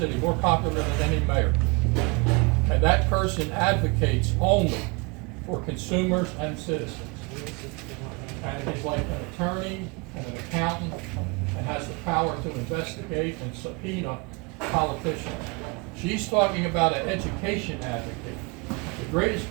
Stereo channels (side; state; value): left; quieter; 29.2 dB